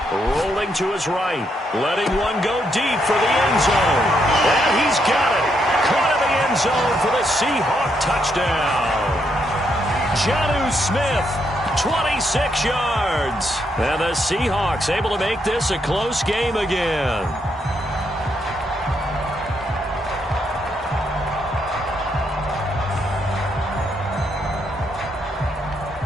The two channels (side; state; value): both; normal; correlation 0.77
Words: rolling to his right, letting one go deep for the end zone. And he's got it. Caught in the end zone for the Seahawk touchdown. Jonnu Smith, 26 yards. And the Seahawks able to make this a close game again.